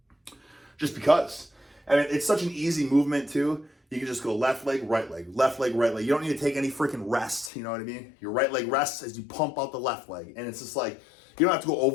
Just because. I mean, it's such an easy movement too. You can just go left leg, right leg, left leg, right leg. You don't need to take any freaking rest, you know what I mean? Your right leg rests as you pump out the left leg. And it's just like, you don't have to go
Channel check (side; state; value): right; drops out; at 7.5 s